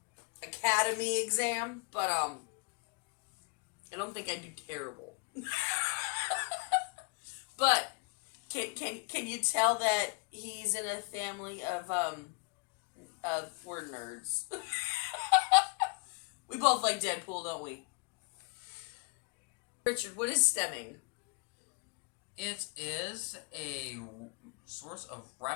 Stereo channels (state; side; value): quieter; right; 33.6 dB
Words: Academy exam, but, I don't think I'd do terrible. But can you tell that he's in a family of we're nerds. We both like Deadpool, don't we? Richard, what is stemming? It is a source of